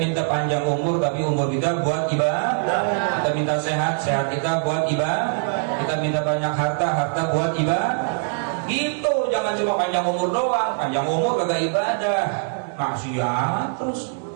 panjang umur, tapi umur kita buat ibadah. Kita minta sehat, sehat kita buat ibadah. Kita minta banyak harta, harta buat ibadah. Gitu, jangan cuma panjang umur doang. Panjang umur kagak ibadah, maksiat terus.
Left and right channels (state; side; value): silent; left; digital silence